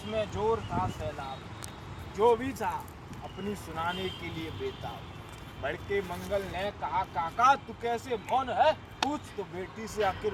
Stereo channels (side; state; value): both; identical; correlation 1.00